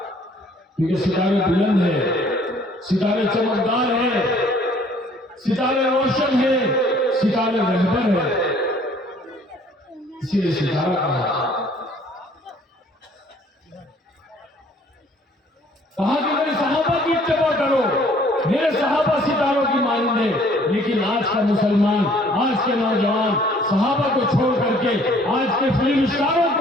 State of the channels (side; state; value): both; normal; correlation 0.58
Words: क्योंकि सितारे बुलंद है, सितारे चमकदार है, सितारे रोशन है, सितारे रहबर है, इसीलिए सितारा कहा कि मेरे सहाबा की इत्तिबा करो, मेरे सहाबा सितारों की मानंद है। लेकिन आज का मुसलमान, आज के नौजवान सहाबा को छोड़ करके आज के फिल्म स्टारों